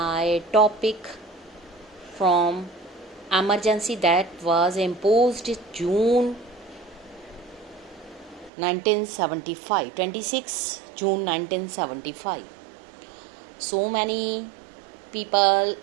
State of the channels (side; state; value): left; drops out; at 8.5 s